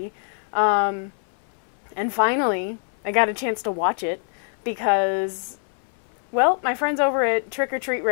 And finally, I got a chance to watch it because, well, my friends over at Trick or Treat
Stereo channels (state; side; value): silent; right; 59 dB below the other